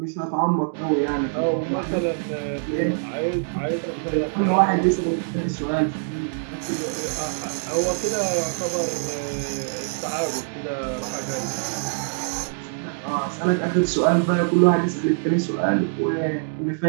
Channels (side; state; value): left; silent; digital silence